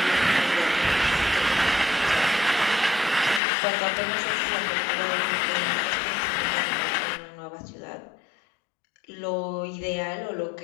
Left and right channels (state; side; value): drops out; right; at 3.4 s